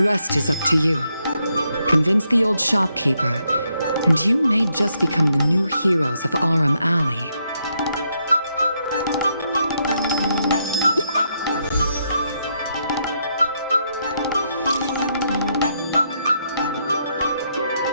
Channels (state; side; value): inverted; both; correlation -0.78